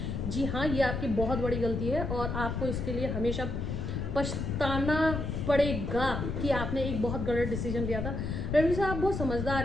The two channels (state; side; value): noise; left; rumble, 3 dB below the sound